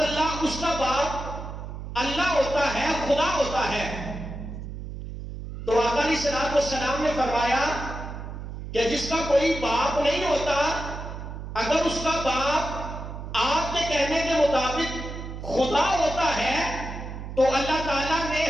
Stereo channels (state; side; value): noise; right; hum, 9 dB below the sound